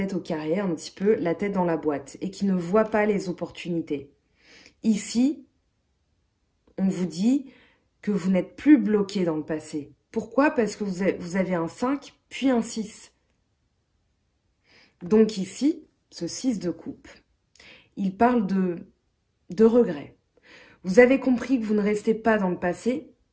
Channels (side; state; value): both; identical; correlation 1.00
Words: au carré, un petit peu, la tête dans la boîte, et qui ne voit pas les opportunités. Ici, on vous dit que vous n'êtes plus bloqué dans le passé. Pourquoi? Parce que vous avez un 5, puis un 6. Donc ici, ce 6 de coupe, il parle de regret. Vous avez compris que vous ne restez pas dans le passé,